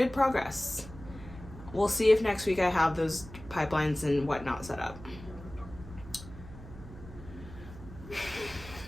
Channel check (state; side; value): noise; right; hum, 15 dB below the sound